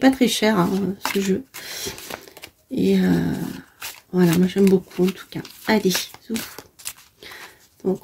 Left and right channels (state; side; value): identical; both; correlation 1.00